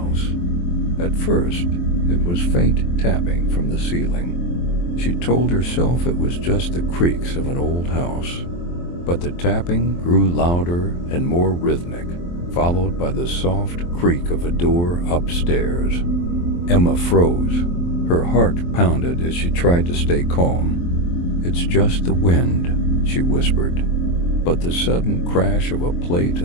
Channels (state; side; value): late; right; 23 ms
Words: At first, it was faint tapping from the ceiling. She told herself it was just the creaks of an old house. But the tapping grew louder and more rhythmic, followed by the soft creak of a door upstairs. Emma froze. Her heart pounded as she tried to stay calm. "It's just the wind," she whispered. But the sudden crash of a plate